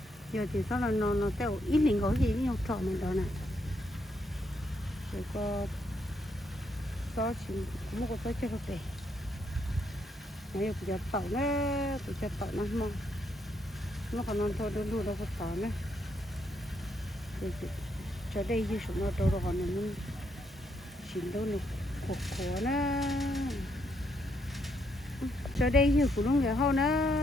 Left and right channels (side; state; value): both; normal; correlation 0.76